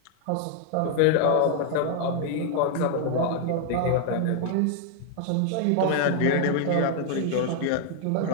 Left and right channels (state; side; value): different; both; correlation 0.00